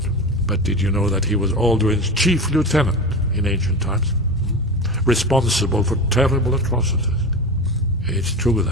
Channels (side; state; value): both; normal; correlation 0.25